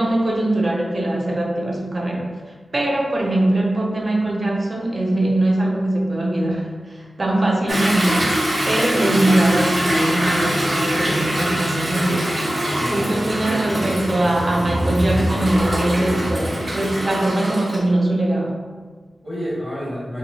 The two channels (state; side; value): normal; both; correlation 0.95